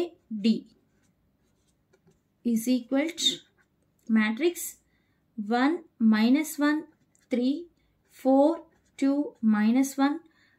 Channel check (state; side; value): identical; both; correlation 1.00